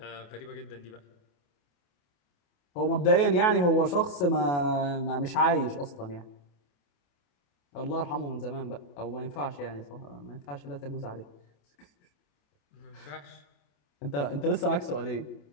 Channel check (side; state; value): right; late; 28 ms